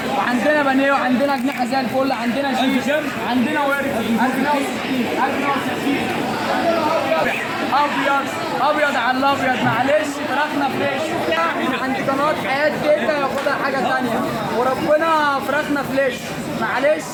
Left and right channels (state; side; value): identical; both; correlation 1.00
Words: وعندنا بانيه وعندنا اجنحه زي الفل، عندنا شيش، عندنا ورك 1060 ابيض ابيض على الابيض. معلش فراخنا فريش من عند قناه حياه تيتا، ياخدها حاجه ثانيه وربنا فراخنا فريش. معلش